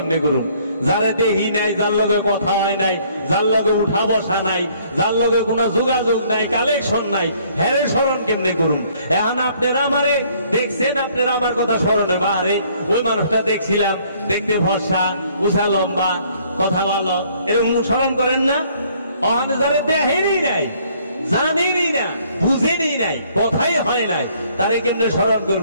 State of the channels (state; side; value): inverted; both; correlation -0.62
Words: করুন? যারে দেহি নাই, যার লগে কথা হয় নাই, যার লগে উঠা বসা নাই, যার লগে কোনো যোগাযোগ নাই, কালেকশন নাই, হেরে স্মরণ কেমনে করুন? এখন আপনারা আমারে দেখছেন, আপনারা আমার কথা স্মরণে বাহারে ওই মানুষটা দেখছিলাম, দেখতে ভরসা, উষা লম্বা, কথা ভালো, এরকম স্মরণ করেন না? অহনে যারে দেখেনই নাই, জানেনই না, বুঝেনই নাই, কথাই হয় নাই, তারে কেমনে স্মরণ